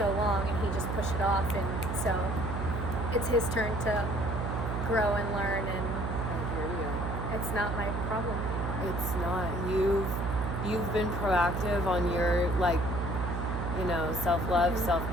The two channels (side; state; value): right; noise; hum, 3 dB below the sound